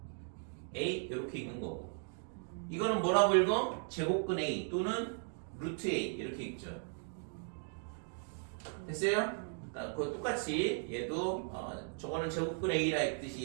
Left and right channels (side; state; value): left; silent; 53 dB below the other